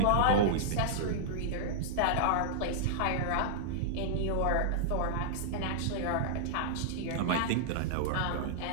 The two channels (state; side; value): different; both; correlation -0.02